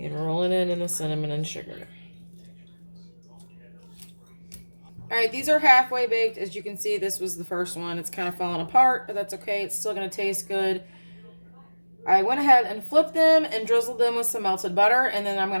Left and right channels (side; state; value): both; inverted; correlation -1.00